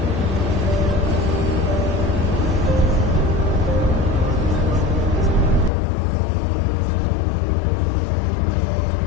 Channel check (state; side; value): drops out; right; at 5.7 s